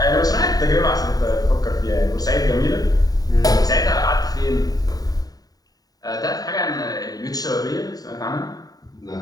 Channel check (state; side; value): late; right; 0.18 ms